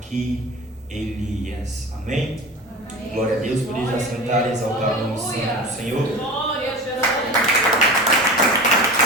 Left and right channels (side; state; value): both; normal; correlation 0.33